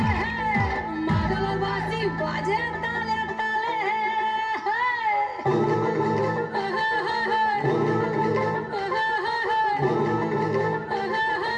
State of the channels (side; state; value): both; identical; correlation 1.00